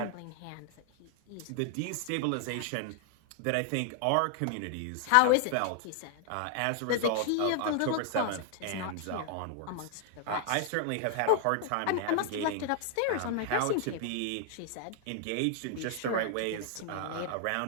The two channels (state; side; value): different; both; correlation 0.00